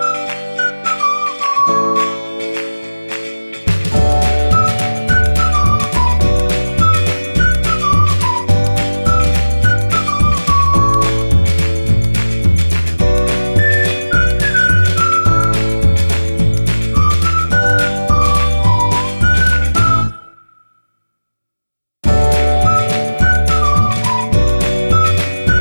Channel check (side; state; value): both; inverted; correlation -1.00